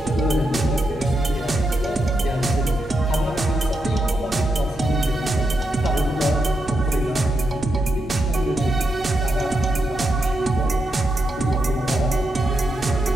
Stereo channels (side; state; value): both; normal; correlation 0.84